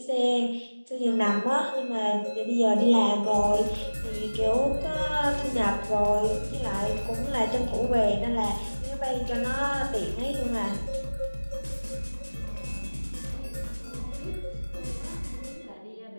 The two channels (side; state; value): both; inverted; correlation -1.00